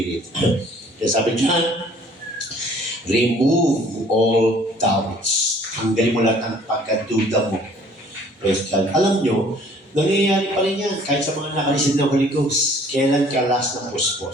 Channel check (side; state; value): both; normal; correlation 0.55